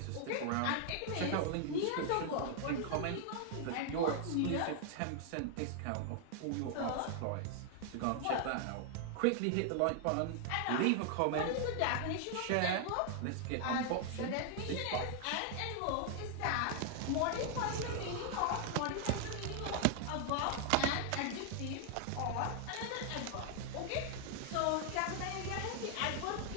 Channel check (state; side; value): different; both; correlation 0.00